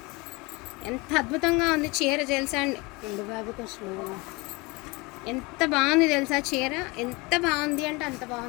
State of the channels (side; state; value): right; quieter; 25.6 dB